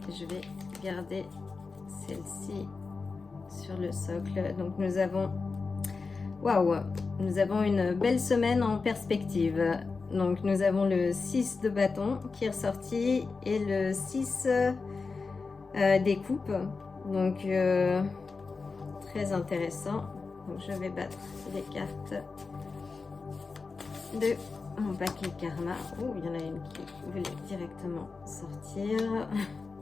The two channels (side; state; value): right; quieter; 4.4 dB